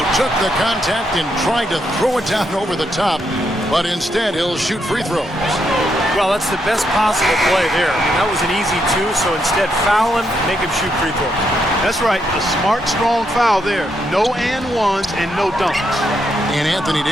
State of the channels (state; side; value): normal; both; correlation 0.79